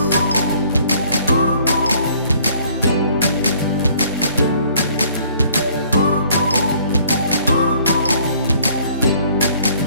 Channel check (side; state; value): both; inverted; correlation -0.59